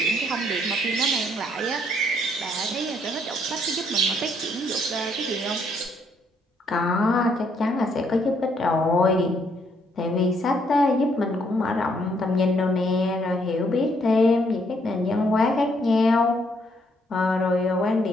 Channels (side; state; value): both; normal; correlation 0.70